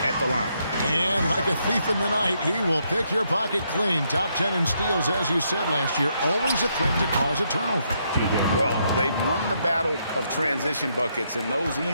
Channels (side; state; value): both; inverted; correlation -0.76